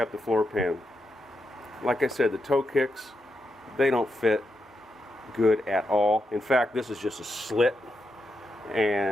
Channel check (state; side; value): normal; both; correlation 0.85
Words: the floor pan. Like I said, the toe kicks, they don't fit good at all. In fact, this is just a slit,